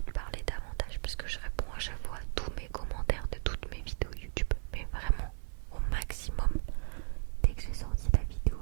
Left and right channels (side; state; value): left; silent; digital silence